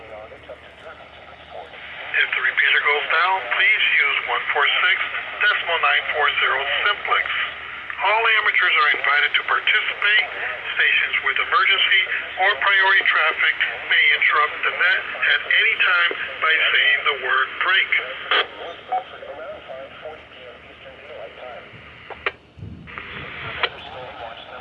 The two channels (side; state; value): both; identical; correlation 1.00